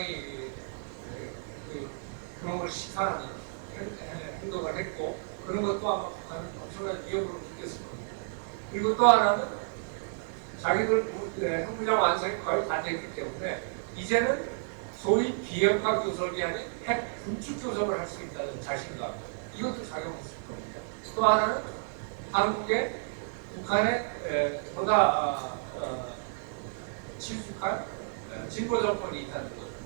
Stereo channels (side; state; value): left; silent; digital silence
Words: 그런 걸 시탄하는 행동을 했고, 그런 것도 아마 북한은 엄청난 위협으로 느꼈을 겁니다. 그리고 또 하나는 자기들 핵무장 완성이 거의 다 됐기 때문에 이제는 소위 비핵화 교섭이 아닌 핵 군축 교섭을 할 수 있다는 자신감, 이것도 작용했을 겁니다. 또 하나는 한국의 북한에 보다 친숙한 진보 정권이 있다는 것,